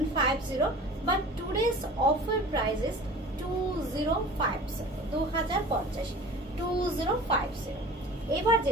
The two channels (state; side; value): normal; both; correlation 0.41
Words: but today's offer price is 2050, 2050। এবার